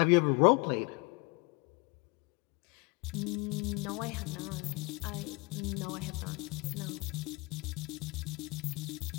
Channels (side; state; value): right; quieter; 27.0 dB